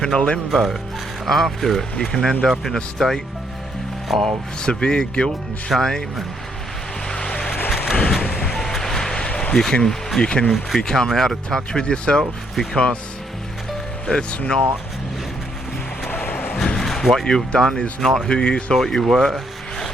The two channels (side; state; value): both; normal; correlation 0.73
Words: in a limbo after it. You can end up in a state of severe guilt and shame, and you can become out of touch with yourself because it's not what you've done is not who you thought you were.